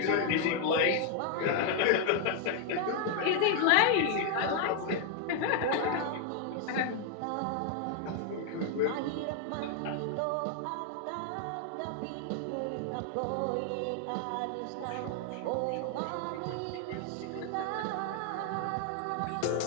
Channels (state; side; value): different; both; correlation 0.00